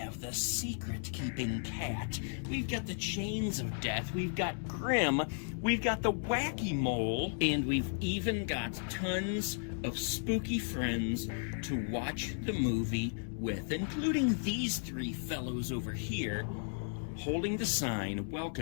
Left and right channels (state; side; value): silent; right; digital silence